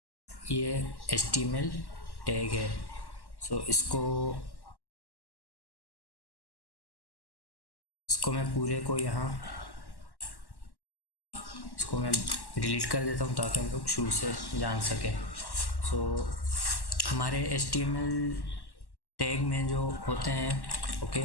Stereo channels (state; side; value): late; right; 1.1 ms